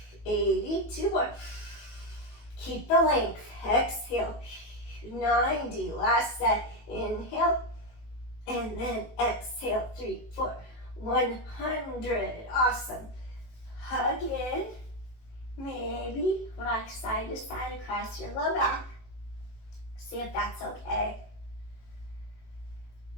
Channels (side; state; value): right; late; 18 ms